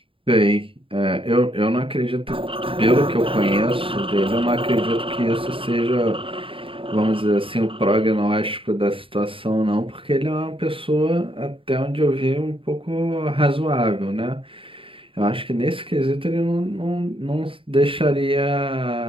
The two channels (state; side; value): late; left; 0.26 ms